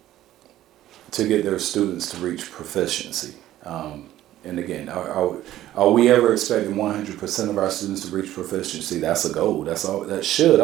their students to reach proficiency. And again, are we ever expecting 100% of our students to reach proficiency? That's a goal. That should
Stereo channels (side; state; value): left; quieter; 13.7 dB